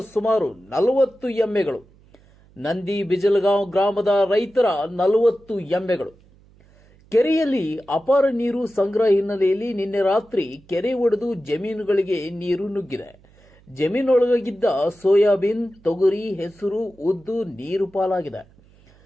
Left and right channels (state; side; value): noise; right; hum, 28 dB below the sound